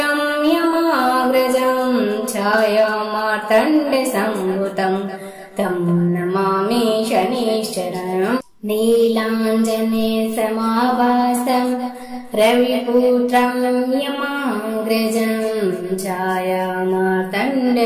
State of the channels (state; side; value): identical; both; correlation 1.00